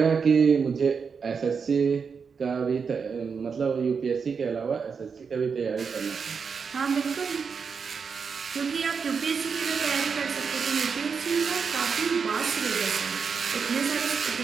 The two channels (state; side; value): quieter; left; 5.8 dB